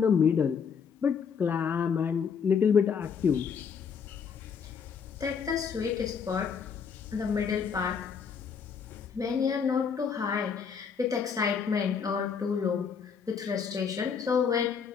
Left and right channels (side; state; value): right; quieter; 6.5 dB